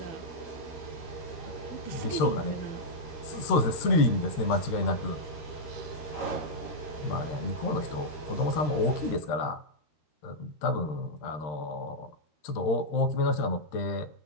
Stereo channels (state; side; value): late; right; 13 ms